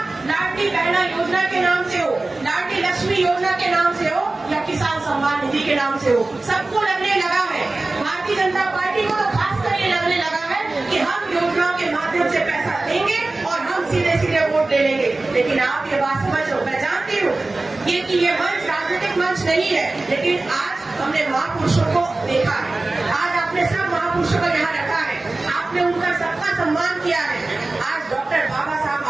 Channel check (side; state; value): left; quieter; 3.1 dB